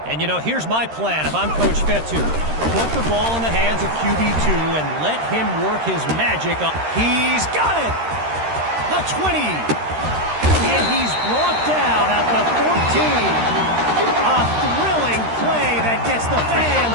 And, you know, here's my plan if I'm Coach Fetu. Put the ball in the hands of QB2 and let him work his magic. He's got it! The 20. And he's brought down at the 14. A thrilling play that gets the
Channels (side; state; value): left; late; 13 ms